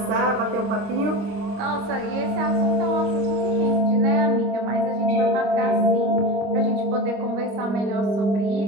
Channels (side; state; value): left; late; 25 ms